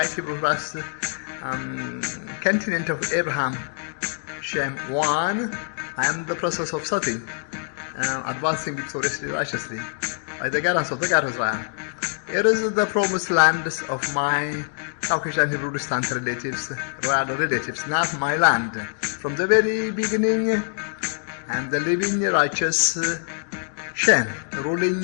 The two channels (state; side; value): silent; right; digital silence